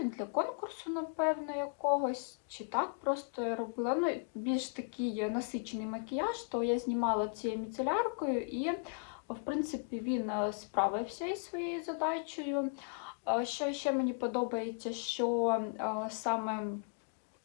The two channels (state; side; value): quieter; right; 39.3 dB